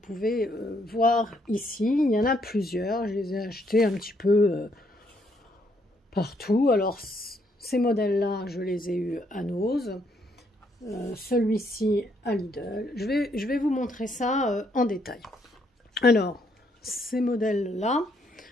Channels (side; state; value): both; normal; correlation 0.72